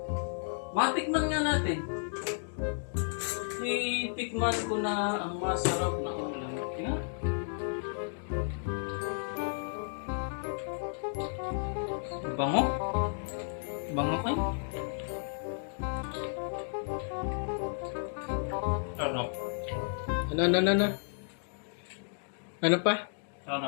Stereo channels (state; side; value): silent; right; digital silence